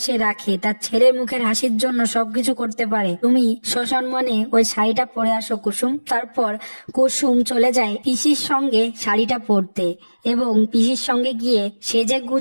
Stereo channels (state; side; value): inverted; both; correlation -1.00